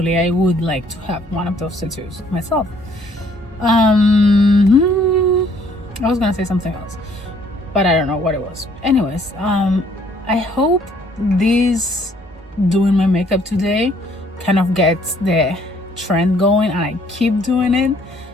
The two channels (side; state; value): both; normal; correlation 0.62